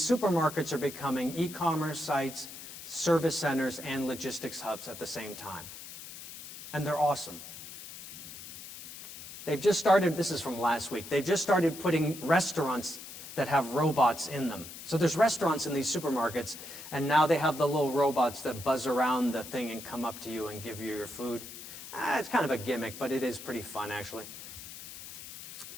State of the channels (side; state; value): left; noise; hiss, 13 dB below the sound